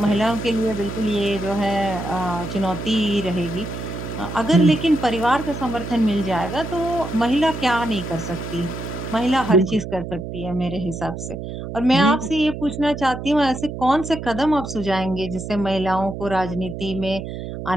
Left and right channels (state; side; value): noise; right; hum, 8 dB below the sound